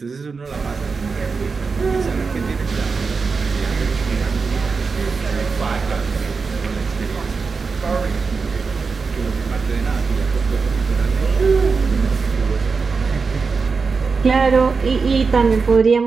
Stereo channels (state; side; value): quieter; left; 4.8 dB